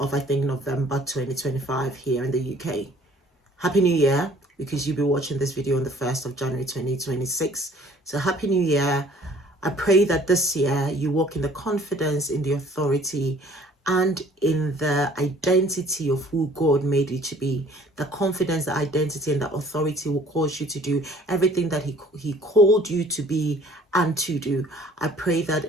I think, November 2025 here in the UK. Happy New Year, because you'll be watching this video on the 1st of January 2026. So Happy New Year. I pray that this year you walk in the confidence, in the authority, and in the identity of who God made you to be. The confidence, the identity, and the authority will cause you to do everything that He called you to be and to do. I pray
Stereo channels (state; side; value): normal; both; correlation 0.55